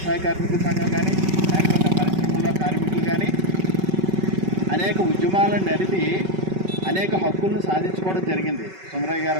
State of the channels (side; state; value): left; late; 5.3 ms